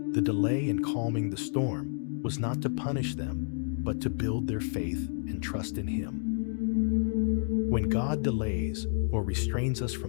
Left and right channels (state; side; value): silent; right; 58 dB below the other